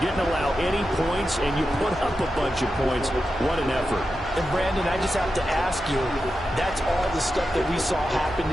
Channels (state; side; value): normal; both; correlation 0.90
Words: allow any points, and you put up a bunch of points. What an effort. And, Brandon, I just have to ask you, that's all the stuff that we saw happen